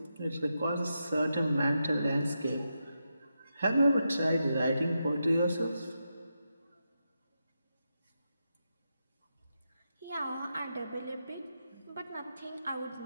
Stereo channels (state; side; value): inverted; both; correlation -0.86